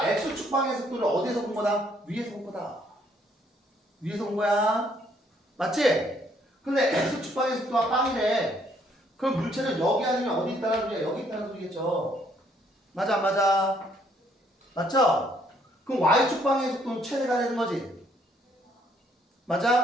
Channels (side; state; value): both; normal; correlation 0.67